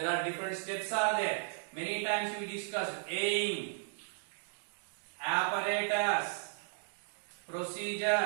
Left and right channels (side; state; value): left; silent; digital silence